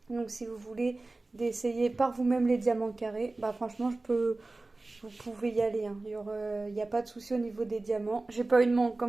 Donc si vous voulez d'essayer par vous-même les diamants carrés, bah franchement, vous pouvez y aller, hein. Il n'y a pas de souci au niveau des diamants. J'ai pas eu de manque,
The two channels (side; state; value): left; quieter; 3.1 dB